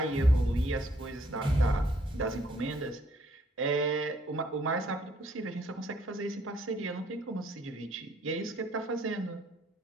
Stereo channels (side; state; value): both; normal; correlation 0.66